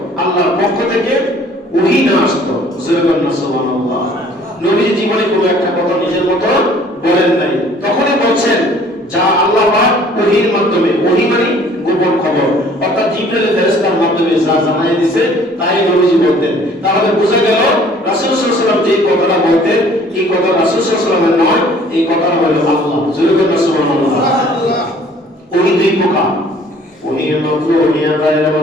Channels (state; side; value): normal; both; correlation 0.55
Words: আল্লাহর পক্ষ থেকে ওহী না আসতো। সুবহানাল্লাহ। নবী জীবনে কোনো একটা কথা নিজের মতো বলেন নাই, তখনই বলছেন যা আল্লাহ পাক ওহীর মাধ্যমে, ওহী মানে গোপন খবর, অর্থাৎ জিবরাইল ফেরেশতার মাধ্যমে যা জানাই দিয়েছে তাই নবীজি বলতেন। তাহলে বোঝা গেল রাসূল সাল্লাল্লাহু আলাইহি ওয়াসাল্লাম যে কথাটা বলতেন এই কথা রাসূল সাল্লাল্লাহু আলাইহি ওয়াসাল্লামের নয়, এই কথাটা হলো আল্লাহ। সুবহানাল্লাহ। ওহী দুই প্রকার, ওহীর মাত্র, ওহীর গায়রে